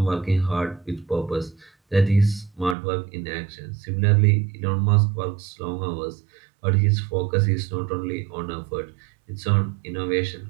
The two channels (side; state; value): left; drops out; at 2.8 s